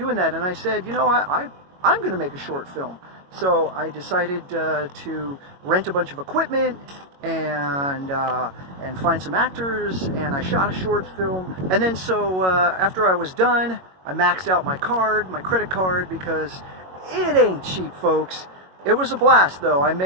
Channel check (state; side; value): late; left; 22 ms